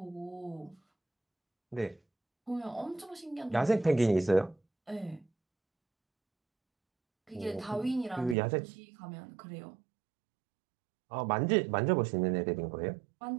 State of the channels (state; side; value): drops out; left; at 8.3 s